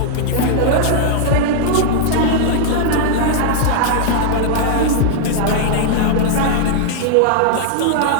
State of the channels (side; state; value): both; different; correlation -0.01